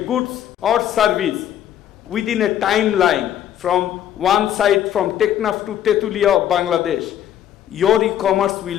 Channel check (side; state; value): right; quieter; 10.8 dB